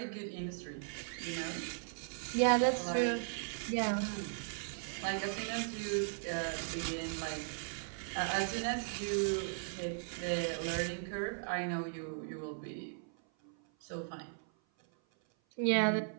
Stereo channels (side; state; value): left; silent; 53 dB below the other